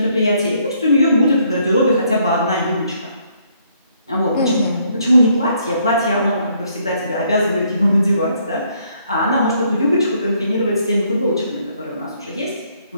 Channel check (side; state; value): both; inverted; correlation -0.69